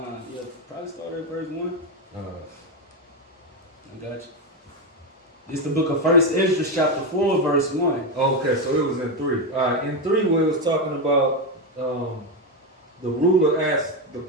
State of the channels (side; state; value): both; normal; correlation 0.09